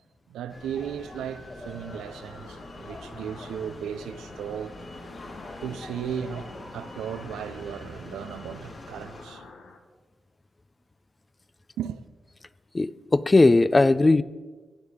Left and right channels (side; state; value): both; normal; correlation 0.93